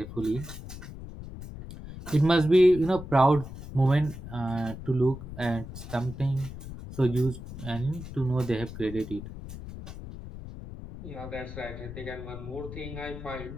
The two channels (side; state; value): left; noise; rumble, 11 dB below the sound